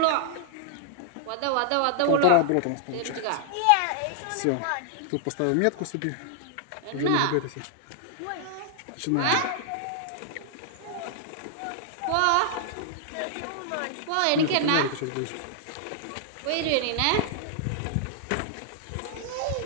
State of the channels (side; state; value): both; different; correlation -0.01